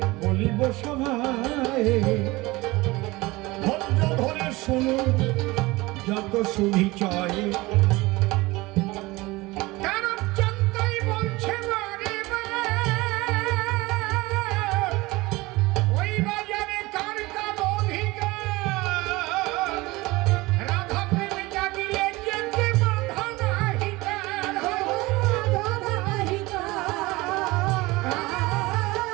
বলিব সভায়, ধৈর্য ধরে শুনো যত সুবিচয়।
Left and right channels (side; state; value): left; quieter; 21.3 dB